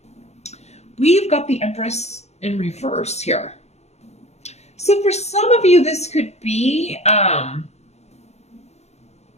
We've got the Empress in reverse here. So for some of you, this could be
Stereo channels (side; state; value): right; late; 0.32 ms